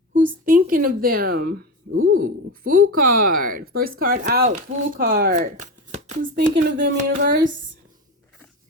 Who's thinking of them? Ooh, Fool card. First card out, Fool card. Who's thinking of them, universe?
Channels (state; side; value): normal; both; correlation 0.21